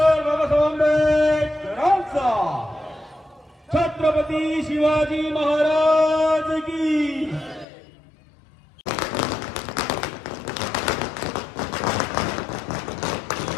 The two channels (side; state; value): right; drops out; at 7.7 s